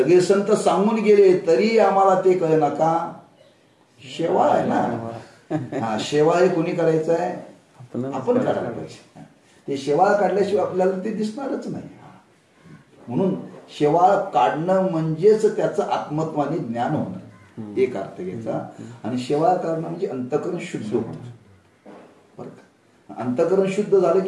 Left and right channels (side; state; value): both; identical; correlation 1.00